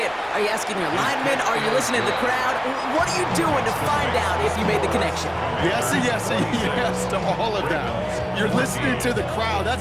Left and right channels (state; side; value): identical; both; correlation 1.00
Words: Are you asking your linemen? Are you listening to the crowd? What are you doing to find out if you made the connection? Yes and yes and yes to all of that. You're listening to the crowd.